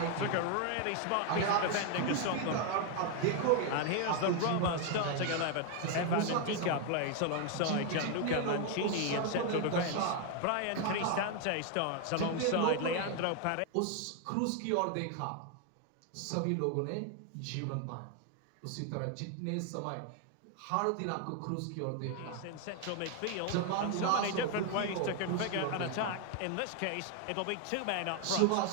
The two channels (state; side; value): different; both; correlation 0.01